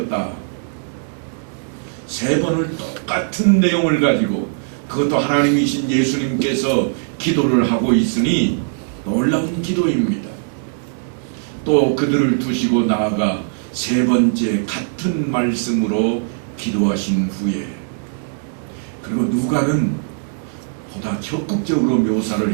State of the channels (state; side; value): silent; left; digital silence